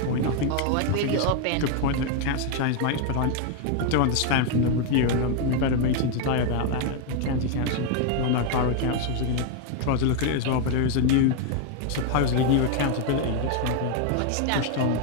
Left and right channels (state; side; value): different; both; correlation 0.01